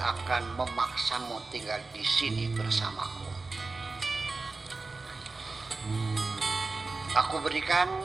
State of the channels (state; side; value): quieter; left; 3.7 dB